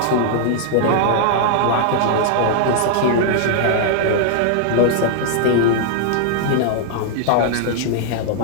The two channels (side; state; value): both; different; correlation 0.00